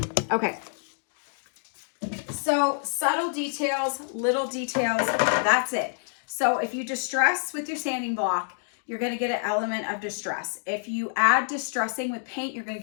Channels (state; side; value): silent; right; digital silence